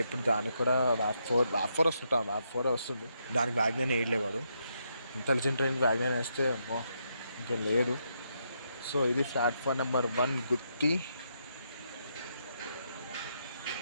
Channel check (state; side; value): inverted; both; correlation -0.79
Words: ఇప్పుడు దానికి కూడా వ్యాప్ ఫోర్ వస్తుంది. దానికి వ్యాగ్నైన్ వేయలేవాడు. ఇంటెలిజెంట్ ట్రైన్కి వ్యాగ్నైన్ వేస్తే ఇంకేం లేదు. సో ఇది ప్లాట్ఫామ్ నెంబర్ 1 గుత్తి.